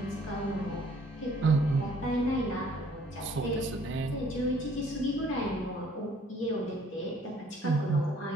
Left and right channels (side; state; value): both; normal; correlation 0.59